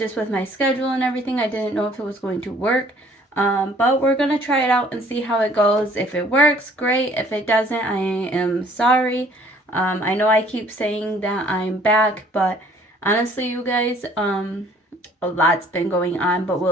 with my schedule and everything. I didn't know if it was going to work. But we're going to try it out and see how it goes. If it works, great. If it doesn't, I am sorry. I know I keep saying that I'm back, but honestly, you guys, a lot's been going on, but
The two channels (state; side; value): normal; both; correlation 0.57